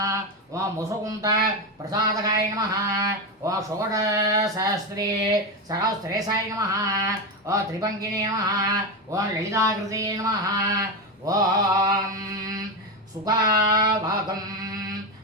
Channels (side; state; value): both; normal; correlation 0.13